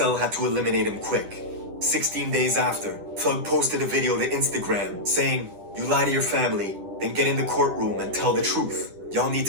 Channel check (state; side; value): late; left; 10 ms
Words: had to eliminate him quick. 16 days after, Thug posted a video to Instagram saying, "You lie to your family, then get in the courtroom and tell the truth. Y'all need